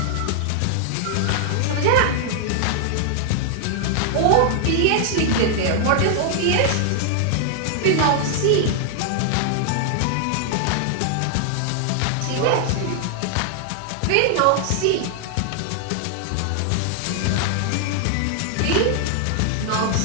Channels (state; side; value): different; both; correlation 0.00